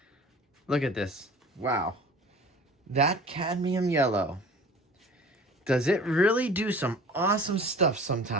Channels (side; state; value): both; normal; correlation 0.43